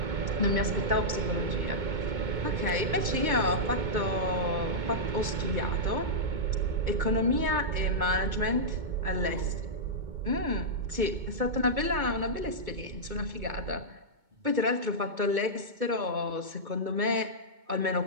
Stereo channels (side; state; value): left; late; 2.2 ms